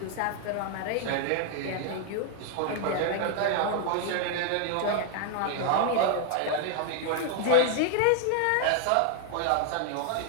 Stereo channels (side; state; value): both; different; correlation 0.00